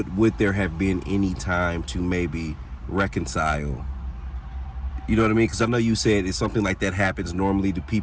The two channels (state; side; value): identical; both; correlation 1.00